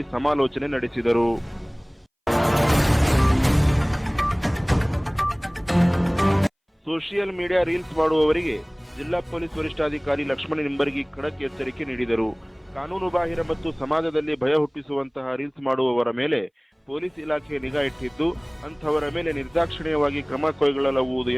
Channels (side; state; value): both; identical; correlation 1.00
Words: ಸಮಾಲೋಚನೆ ನಡೆಸಿದರು. ಸೋಷಿಯಲ್ ಮೀಡಿಯಾ ರೀಲ್ಸ್ ಮಾಡುವವರಿಗೆ ಜಿಲ್ಲಾ ಪೊಲೀಸ್ ವರಿಷ್ಠಾಧಿಕಾರಿ ಲಕ್ಷ್ಮಣ ನಿಂಬರ್ಗಿ ಖಡಕ್ ಎಚ್ಚರಿಕೆ ನೀಡಿದರು. ಕಾನೂನು ಬಾಹಿರ ಮತ್ತು ಸಮಾಜದಲ್ಲಿ ಭಯ ಹುಟ್ಟಿಸುವಂತಹ ರೀಲ್ಸ್ ಮಾಡುವವರ ಮೇಲೆ ಪೊಲೀಸ್ ಇಲಾಖೆ ನಿಗಾ ಇಟ್ಟಿದ್ದು, ಅಂಥವರ ಮೇಲೆ ನಿರ್ದಾಕ್ಷಿಣ್ಯವಾಗಿ ಕ್ರಮ ಕೈಗೊಳ್ಳಲಾಗುವುದು